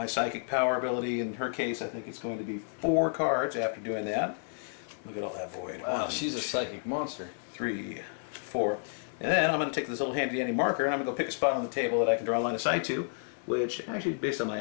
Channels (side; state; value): right; silent; 57 dB below the other